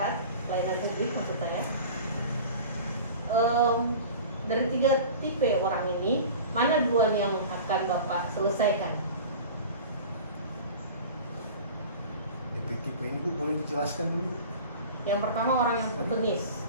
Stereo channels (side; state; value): both; inverted; correlation -0.38